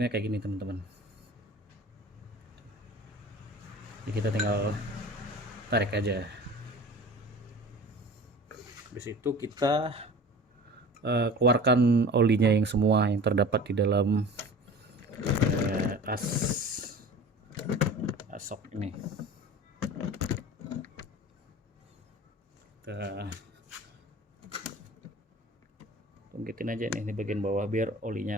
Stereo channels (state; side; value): normal; both; correlation 0.40